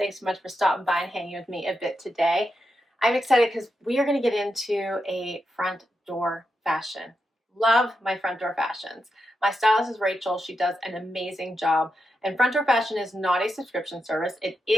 so much for stopping by and hanging with me a bit today. I'm excited because we are going to get into a front door fashion. Love my front door fashions. My stylist is Rachel. She does an amazing job. And front door fashion is not a subscription service. It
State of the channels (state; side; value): normal; both; correlation 0.86